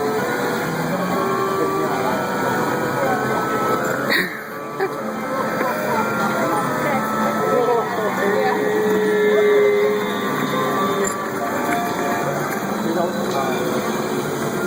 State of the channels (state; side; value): identical; both; correlation 1.00